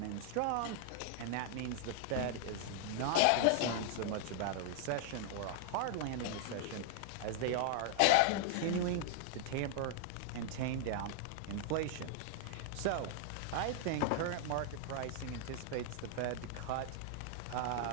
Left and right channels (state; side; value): different; both; correlation -0.01